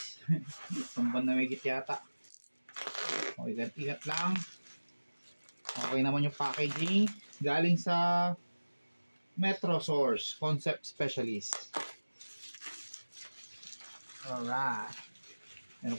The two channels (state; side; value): inverted; both; correlation -1.00